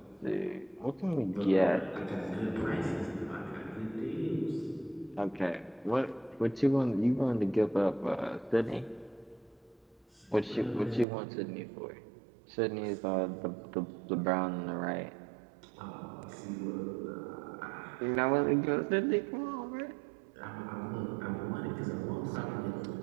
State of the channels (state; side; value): drops out; left; at 11.1 s